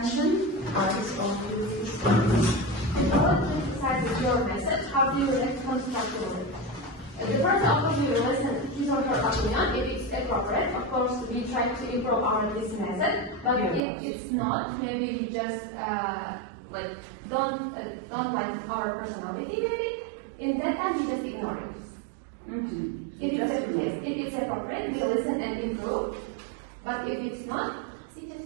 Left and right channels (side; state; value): left; drops out; at 13.8 s